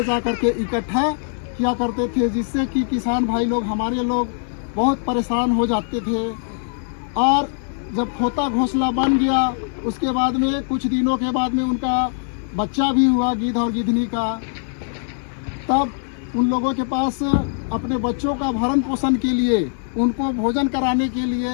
जा करके इकट्ठा किया करते थे, जिससे कि किसान भाई लोग, हमारे लोग बहुत परेशान हो जाते थे। और जब खोता घोंसला बन गया, उसके बाद में कुछ दिनों के बाद में उनका बच्चा भी हुआ गिद्ध और गिद्धनी का। तब उन लोगों के पास अपने बच्चों का भरण पोषण के लिए, उनको भोजन कराने के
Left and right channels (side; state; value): right; silent; digital silence